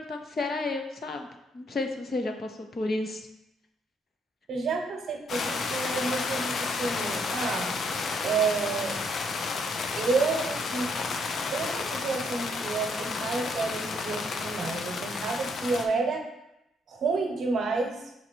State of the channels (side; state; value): both; normal; correlation 0.71